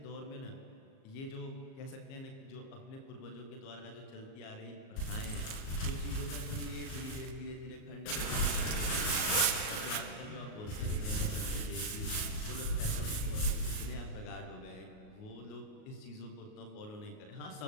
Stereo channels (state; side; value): late; right; 38 ms